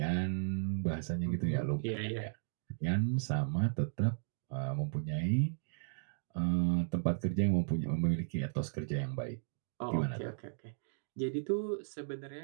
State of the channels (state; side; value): silent; left; digital silence